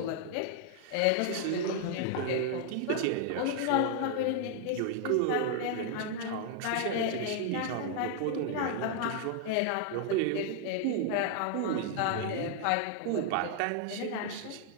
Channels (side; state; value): both; different; correlation 0.00